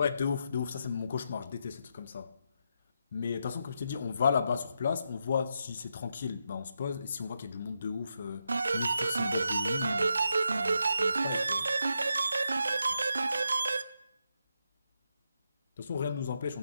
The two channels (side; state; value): both; inverted; correlation -0.83